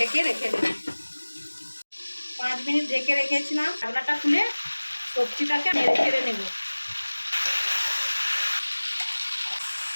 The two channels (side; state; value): both; inverted; correlation -1.00